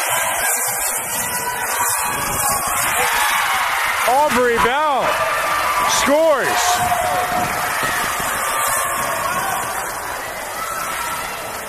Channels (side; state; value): both; identical; correlation 1.00